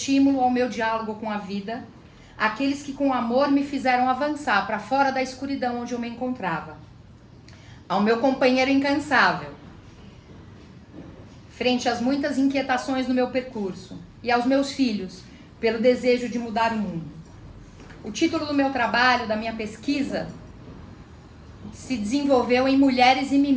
ao meu diálogo com a vida, aqueles que com amor me fizeram avançar para fora da escuridão onde eu me encontrava. Ao meu companheiro incansável, frente às muitas inquietações no meu percurso, e aos meus filhos, pelo desejo de mudar o mundo. O título do meu trabalho, da minha pesquisa, se desenvolveu em Mulheres e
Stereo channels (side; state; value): both; identical; correlation 1.00